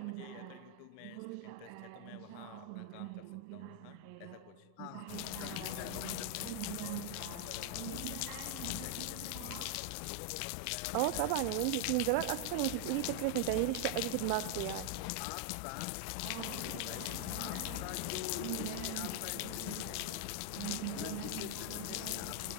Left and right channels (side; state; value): both; different; correlation 0.00